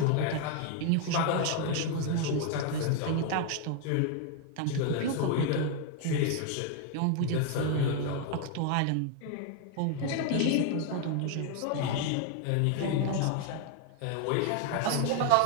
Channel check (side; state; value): both; different; correlation 0.01